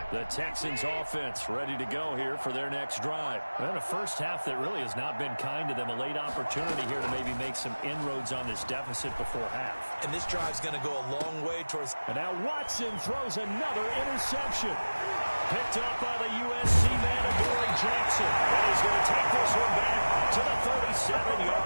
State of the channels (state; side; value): inverted; both; correlation -1.00